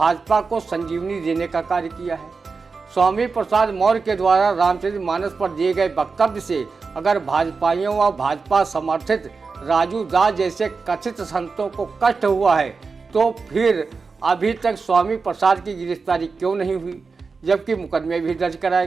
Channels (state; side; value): quieter; left; 4.6 dB